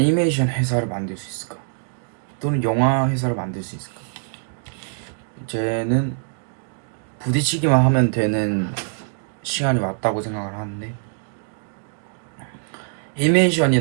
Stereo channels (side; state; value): left; silent; 63 dB below the other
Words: 회사를 만들 수 있을까? 또는 영화 회사를 만들 수 있을까? 이제는 부딪히기만 하면 되는 시간이 왔다고 생각을 하는데,